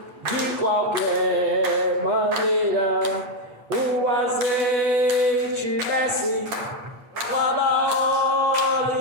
de qualquer maneira. O azeite desce lá da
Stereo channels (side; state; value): left; late; 8.9 ms